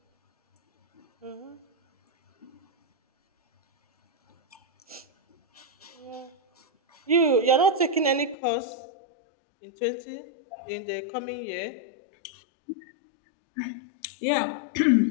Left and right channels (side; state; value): right; drops out; at 8.3 s